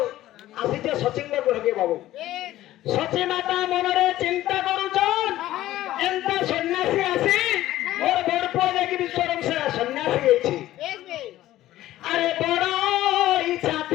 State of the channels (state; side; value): quieter; right; 14.7 dB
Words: আসিছে সচিঙ্গ গ্রহকে বাবু বেশ সচি মাতা মନରେ চিন্তা করুছন এন্তা সন্ন্যাসী আসি মোর বড় পুଅ ଯାଇକି ବିଶ୍ୱରମ ସେ ସନ୍ନ୍ୟାସୀ ହେଇଛି বেশ বেশ আরে বড় ইচ্ছা